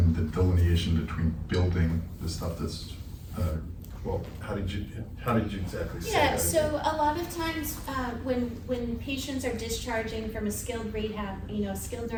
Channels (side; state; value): both; identical; correlation 1.00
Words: the delineation between building the stuff that's, well, how did you exactly say Yeah, that? so a lot of times, when patients are discharging from a skilled rehab, you know, skilled